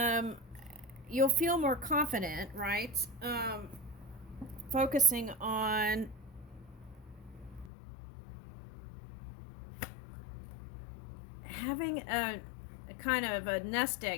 you'll feel more confident, right? Focusing on having a kind of a nest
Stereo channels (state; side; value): drops out; right; at 7.7 s